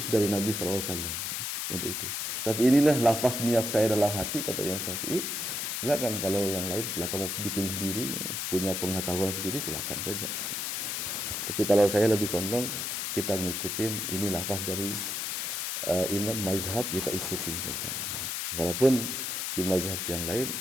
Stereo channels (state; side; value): noise; left; hiss, 2 dB below the sound